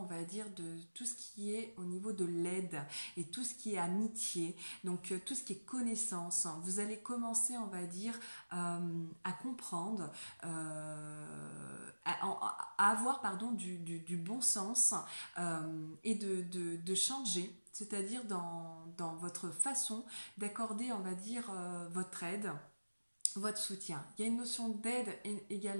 va dire, de tout ce qui est au niveau de l'aide et tout ce qui est amitié. Donc tout ce qui est connaissance, vous allez commencer, on va dire, à comprendre, à avoir du bon sens et de changer, c'est-à-dire dans votre façon d'accorder, on va dire, votre aide, votre soutien. Il y a une notion d'aide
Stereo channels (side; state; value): both; inverted; correlation -1.00